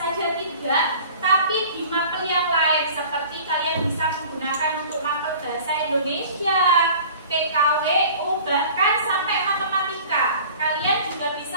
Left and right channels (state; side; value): inverted; both; correlation -0.45